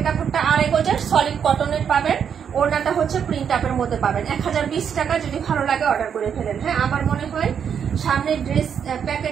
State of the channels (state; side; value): quieter; left; 7.7 dB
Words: কাপড়টা 2.5 গজের সলিড কটনের পাবেন। ওড়নাটা হচ্ছে প্রিন্ট আপের মধ্যে পাবেন। 1020 টাকা। যদি ভালো লাগে অর্ডার করে ফেলেন। হ্যাঁ, আমার মনে হয় সামনে ড্রেস